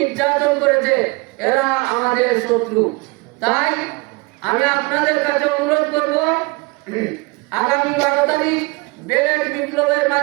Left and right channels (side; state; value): left; quieter; 26.0 dB